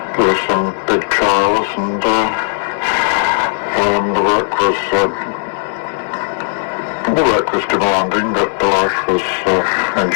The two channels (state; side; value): silent; right; digital silence